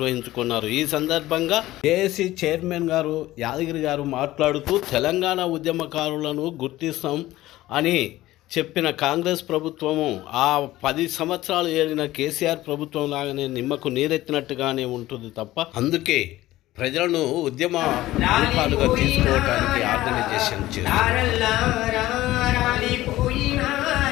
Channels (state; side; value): quieter; right; 16.2 dB